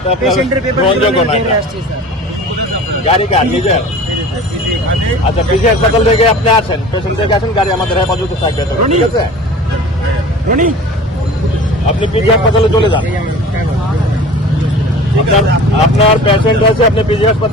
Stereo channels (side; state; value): both; normal; correlation 0.40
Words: পেশেন্টের পেপার নিয়ে আসছি স্যার। গাড়ি কার নিজের? আচ্ছা, পিজি হাসপাতাল থেকে আপনি আসেন, পেশেন্ট থেকে আসেন, গাড়ি আমাদের হেফাজতে থাকবে, ঠিক আছে? আপনি পিজি হাসপাতালে চলে যান, আপনার পেশেন্ট আছে, আপনি পিজি